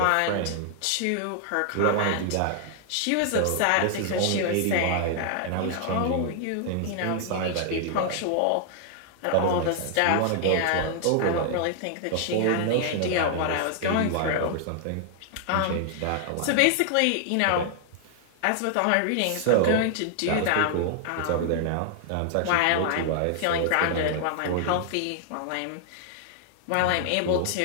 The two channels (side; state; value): both; different; correlation 0.00